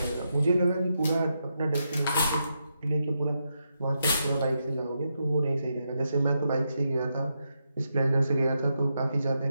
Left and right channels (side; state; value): both; inverted; correlation -0.84